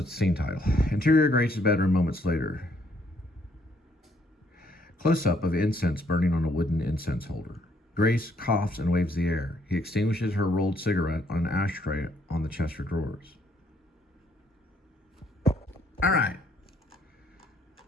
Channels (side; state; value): both; normal; correlation 0.68